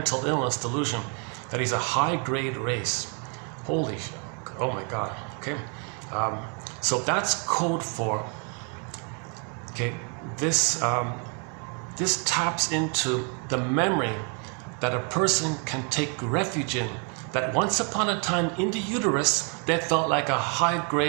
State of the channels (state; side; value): quieter; left; 38.2 dB